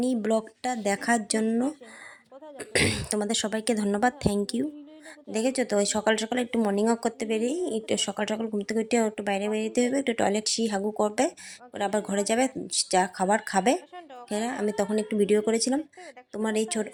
ব্লগটা দেখার জন্য তোমাদের সবাইকে ধন্যবাদ, থ্যাংক ইউ। দেখেছো তো, ওই সকাল সকাল একটু মর্নিং ওয়াক করতে বেরিয়ে, একটু সকাল সকাল ঘুম থেকে উঠে একটু বাইরে বেরিয়ে হবে, একটু টয়লেট হাগু করবে, ওরা আবার ঘরে যাবে, যা খাবার খাবে। হ্যাঁ, আমি তখন একটু ভিডিও করেছিলাম। তোমার এই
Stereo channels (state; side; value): identical; both; correlation 1.00